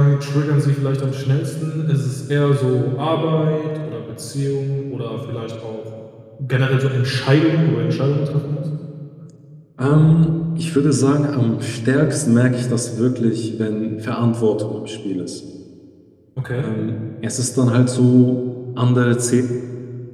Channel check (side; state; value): both; identical; correlation 1.00